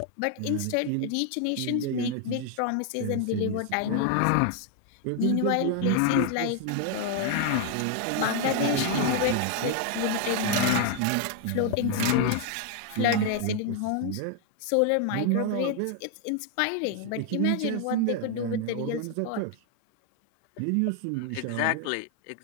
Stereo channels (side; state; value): both; different; correlation 0.00